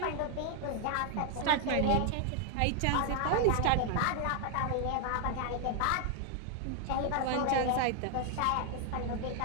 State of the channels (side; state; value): both; different; correlation 0.00